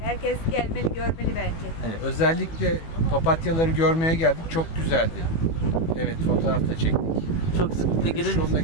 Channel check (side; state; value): right; late; 18 ms